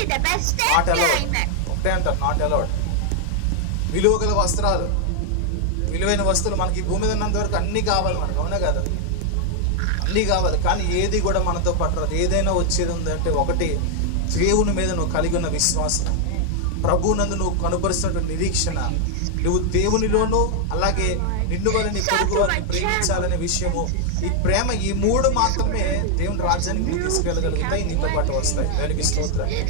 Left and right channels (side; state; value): both; different; correlation 0.00